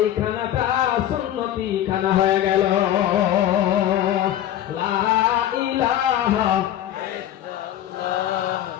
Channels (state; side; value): quieter; right; 11.8 dB